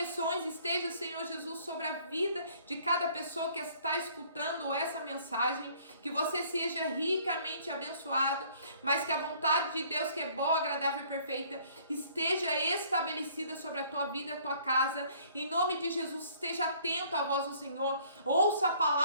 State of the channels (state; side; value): inverted; both; correlation -0.58